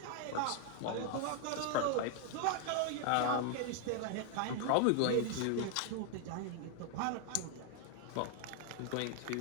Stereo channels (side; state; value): both; different; correlation 0.00